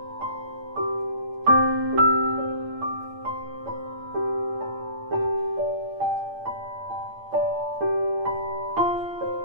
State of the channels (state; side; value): late; left; 8.8 ms